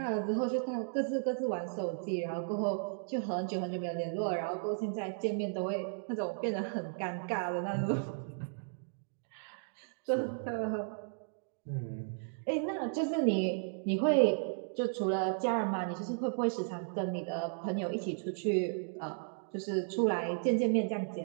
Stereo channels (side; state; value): left; silent; digital silence